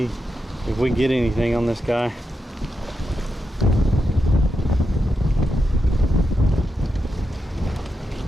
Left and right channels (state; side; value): normal; both; correlation 0.86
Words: if we get anything on this guy.